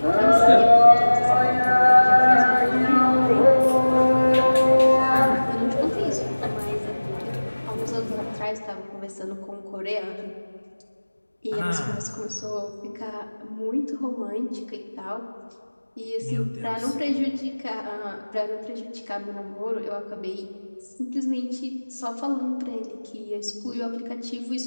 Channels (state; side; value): inverted; both; correlation -1.00